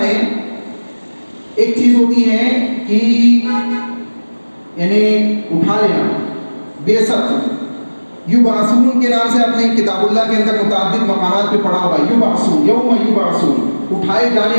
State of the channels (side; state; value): both; inverted; correlation -1.00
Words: ہے ایک چیز ہوتی ہے کہ یعنی اٹھا لینا، بعثت، یبعثون کے نام سے اپنے کتاب اللہ کے اندر متعدد مقامات پہ پڑھا ہوگا. یبعثون، یوم یبعثون، اٹھائے